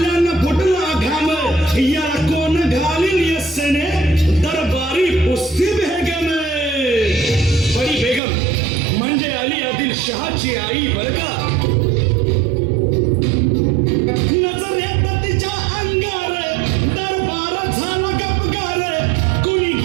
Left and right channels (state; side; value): drops out; left; at 8.2 s